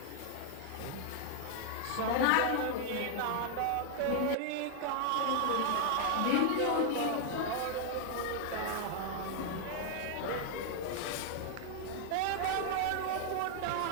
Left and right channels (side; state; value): both; different; correlation 0.00